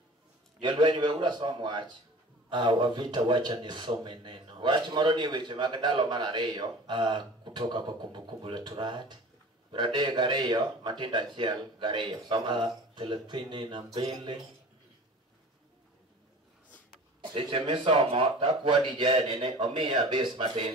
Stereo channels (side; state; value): both; normal; correlation 0.41